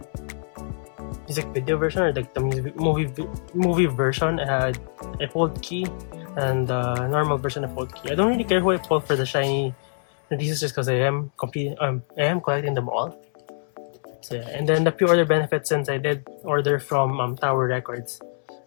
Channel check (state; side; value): silent; right; 62 dB below the other